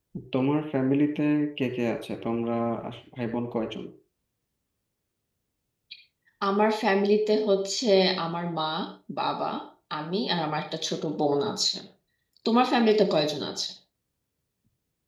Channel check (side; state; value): both; identical; correlation 1.00